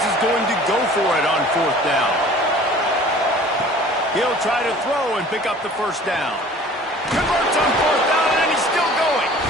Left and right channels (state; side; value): normal; both; correlation 0.47